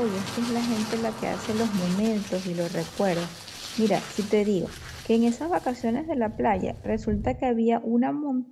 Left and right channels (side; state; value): both; identical; correlation 1.00